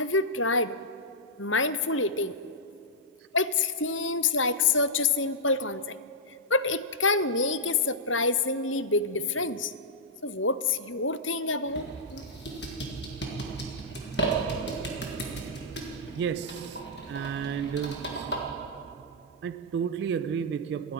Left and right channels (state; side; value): normal; both; correlation -0.11